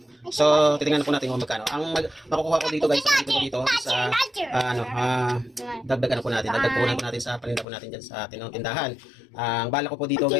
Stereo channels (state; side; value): drops out; right; at 7.7 s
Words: So, titingnan po natin kung magkano. Ang makukuha ko dito guys, dito sa dagdag po natin sa paninda po natin diyan sa tindahan. Ang bala ko po dito